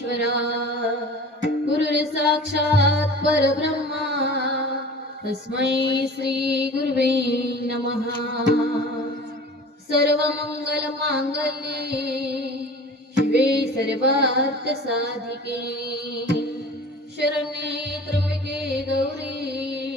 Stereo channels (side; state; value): both; normal; correlation 0.40